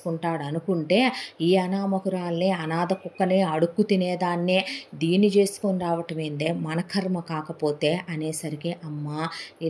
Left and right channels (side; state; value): both; identical; correlation 1.00